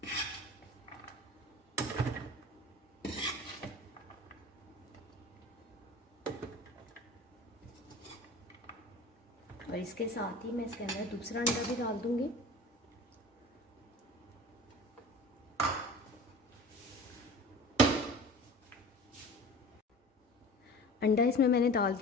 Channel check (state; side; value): normal; both; correlation 0.39